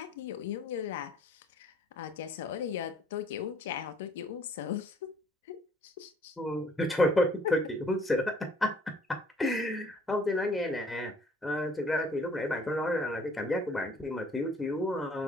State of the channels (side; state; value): both; normal; correlation 0.59